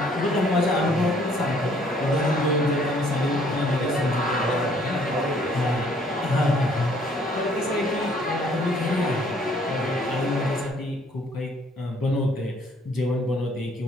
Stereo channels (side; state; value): both; normal; correlation 0.61